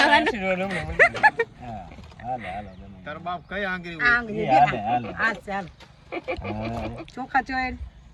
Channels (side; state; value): both; identical; correlation 1.00